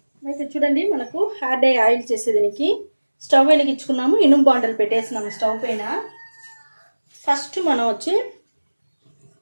అయితే చూడండి, మనకు హెయిర్ డై ఆయిల్ చేసేదానికి స్టవ్ వెలిగించుకున్నాము, ఇనుము బాండలు పెట్టేసినాము స్టవ్ పైన. ఫస్ట్ మనం వచ్చి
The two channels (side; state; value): both; inverted; correlation -1.00